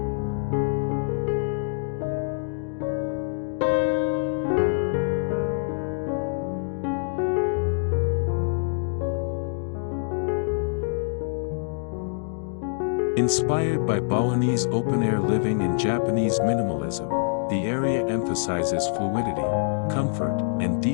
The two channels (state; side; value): silent; right; digital silence